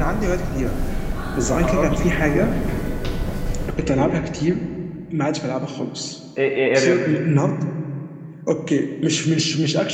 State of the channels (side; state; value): both; identical; correlation 1.00